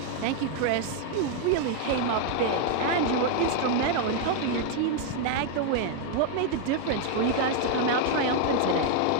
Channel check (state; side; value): different; both; correlation 0.00